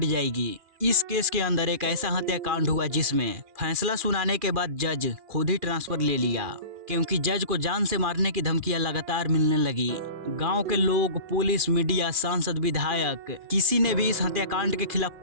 जाएगी। इस केस के अंदर एक ऐसा हत्याकांड हुआ जिसमें फैसला सुनाने के बाद जज खुद ही ट्रांसफर ले लिया, क्योंकि जज को जान से मारने की धमकियां लगातार मिलने लगी। गांव के लोग, पुलिस, मीडिया, सांसद, विधायक, किसी ने भी इस हत्याकांड के खिलाफ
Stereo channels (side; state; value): left; late; 2.4 ms